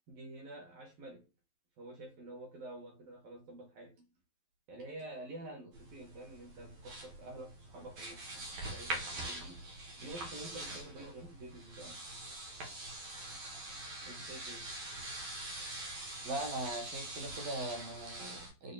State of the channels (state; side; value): late; left; 11 ms